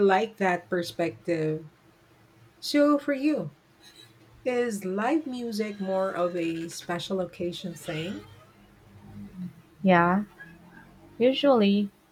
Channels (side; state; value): both; identical; correlation 1.00